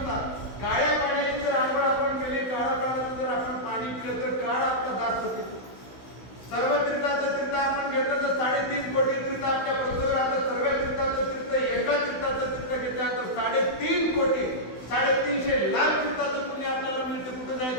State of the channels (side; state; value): right; late; 16 ms